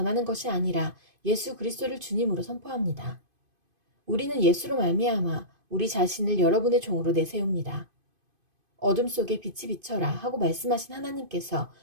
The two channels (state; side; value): late; left; 2.5 ms